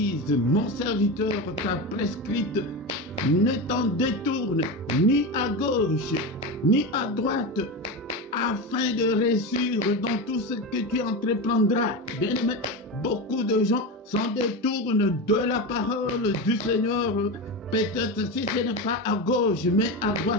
mon serviteur, t'a prescrite. Ne t'en détourne ni à gauche ni à droite, afin de réussir dans tout ce que tu entreprendras. Bien aimé, beaucoup de gens s'en détournent de la parole du Seigneur. Peut-être si ce n'est pas à gauche, mais à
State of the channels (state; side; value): normal; both; correlation 0.20